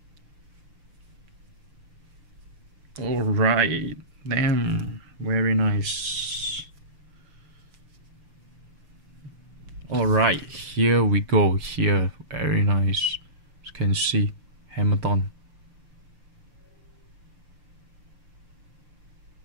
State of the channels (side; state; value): left; late; 6.6 ms